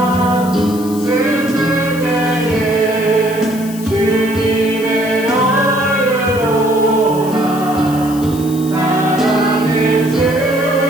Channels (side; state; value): left; noise; hiss, 16 dB below the sound